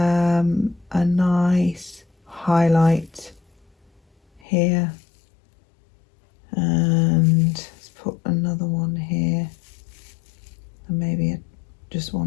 nice highlight here, and let's put another one here, and maybe just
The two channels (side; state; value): right; drops out; at 4.4 s